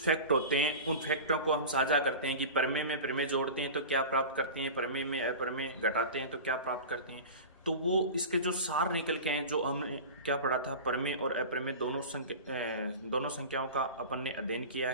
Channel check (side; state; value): both; inverted; correlation -0.31